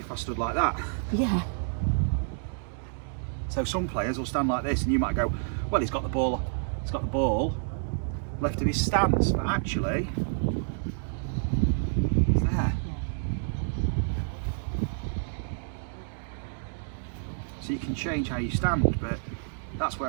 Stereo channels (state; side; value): silent; left; digital silence